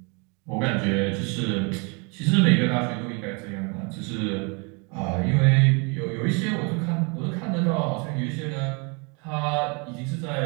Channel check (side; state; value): left; quieter; 32.4 dB